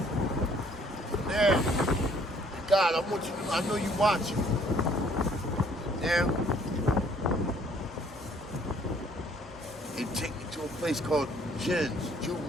Now, God, I want you to, I know you watching. Now, they take me to a place called JINS,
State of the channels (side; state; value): both; normal; correlation 0.60